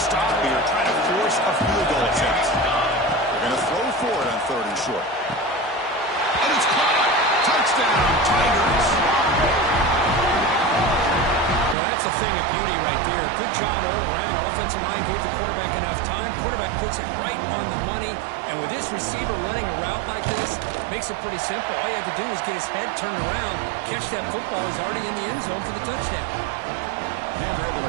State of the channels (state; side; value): drops out; left; at 11.8 s